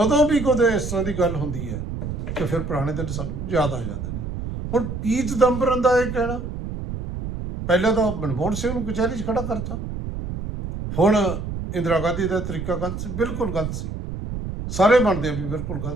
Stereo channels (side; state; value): right; noise; rumble, 6 dB below the sound